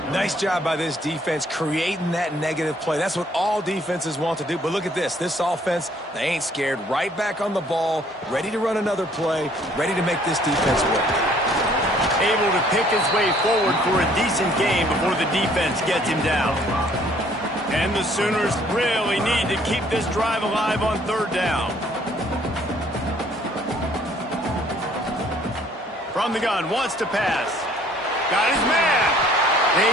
Nice job by this defense creating that negative play. That's what all defenses want to do. But look at this. This offense, they ain't scared. Right back on the ball, ready to run another play, ready to make this defense work. Able to pick his way forward for a decent game before the defense gets him down. And the Sooners really need to keep this drive alive on third down. From the gun, wants to pass. Got his man.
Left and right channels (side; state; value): both; normal; correlation 0.60